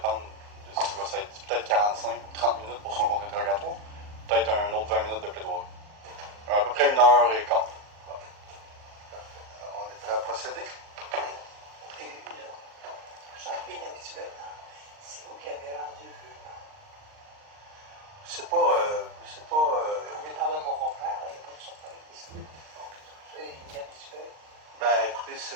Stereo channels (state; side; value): late; left; 39 ms